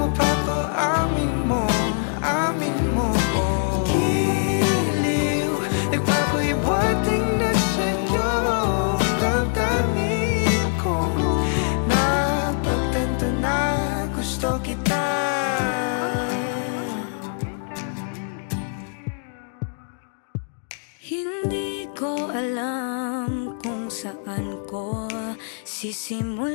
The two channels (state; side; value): silent; right; digital silence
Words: mapapaamin mo, amin mo. Giliw, nagpapahiwating na sa'yo ang damdamin ko. Napagtanto na gusto kita. Hindi ko alam kung saan ko